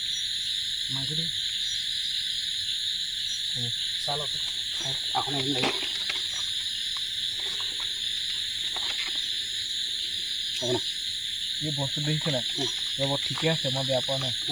মাৰিছে দেই চাহ লওক এখন এদিন লাগি হ'ব না এই বস্তু দেখিছে নাই ৰ'ব ঠিকে আছে মই বেয়া পোৱা নাই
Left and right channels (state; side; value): noise; left; hiss, 21 dB below the sound